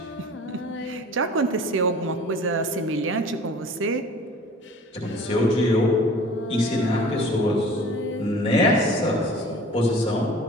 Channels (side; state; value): both; normal; correlation 0.45